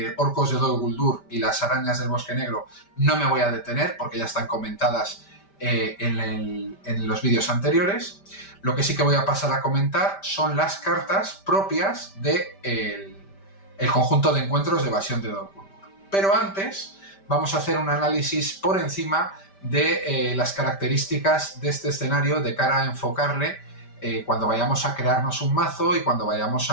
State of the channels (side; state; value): right; late; 5.1 ms